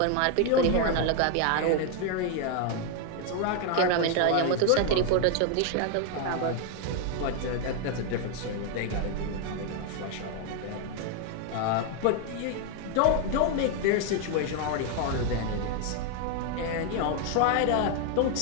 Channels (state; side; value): different; both; correlation 0.00